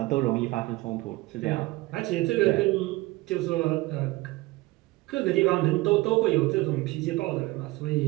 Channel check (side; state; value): left; quieter; 20.4 dB